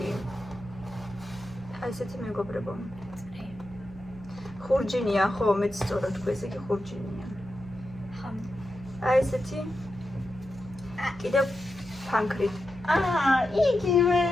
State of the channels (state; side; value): noise; right; hum, 18 dB below the sound